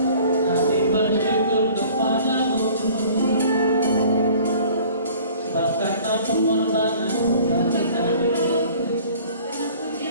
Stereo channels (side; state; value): both; inverted; correlation -0.50